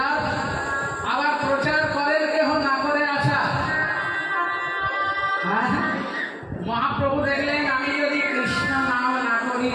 আবার প্রচার করেন কেউ, না করে আচার। মহাপ্রভু দেখলেন আমি যদি কৃষ্ণ নাম না করি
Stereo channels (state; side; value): identical; both; correlation 1.00